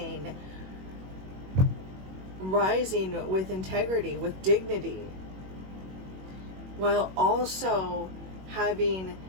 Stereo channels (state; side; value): late; left; 21 ms